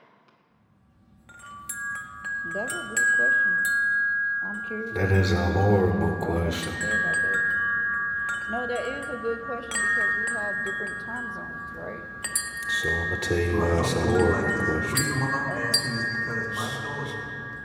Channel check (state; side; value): identical; both; correlation 1.00